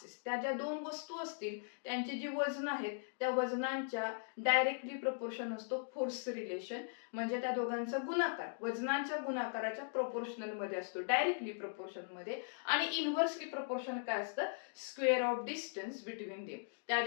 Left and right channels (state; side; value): silent; right; digital silence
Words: त्या ज्या 2 वस्तू असतील त्यांची जी वजन आहेत त्या वजनांच्या डायरेक्टली प्रपोर्शन असतो फोर्स रिलेशन, म्हणजे त्या दोघांचा गुणाकार वजनांच्या गुणाकाराच्या प्रोपोर्शनल मध्ये असतो, डायरेक्टली प्रपोर्शन मध्ये. आणि इन्व्हर्सली प्रपोर्शन काय असतं? Square of distance between them. त्या